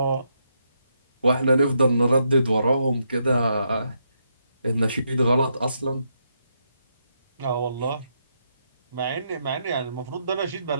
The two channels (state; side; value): inverted; both; correlation -0.79